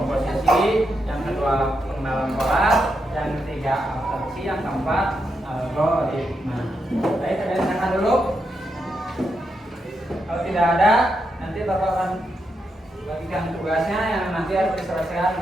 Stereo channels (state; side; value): normal; both; correlation 0.83